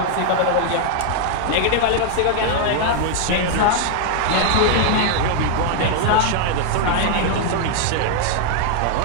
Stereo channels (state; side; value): different; both; correlation 0.00